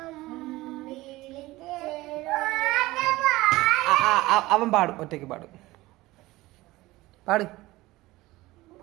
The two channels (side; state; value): left; quieter; 19.0 dB